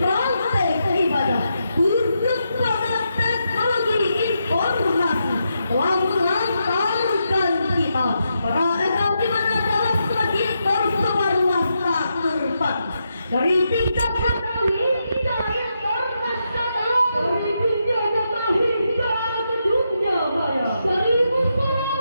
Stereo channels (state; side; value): inverted; both; correlation -0.83